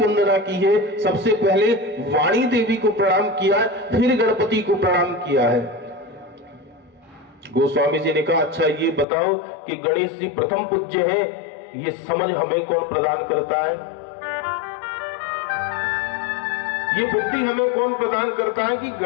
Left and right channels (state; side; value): drops out; right; at 9.1 s